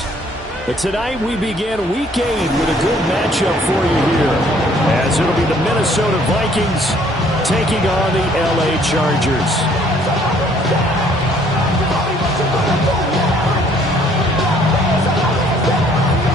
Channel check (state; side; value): normal; both; correlation 0.61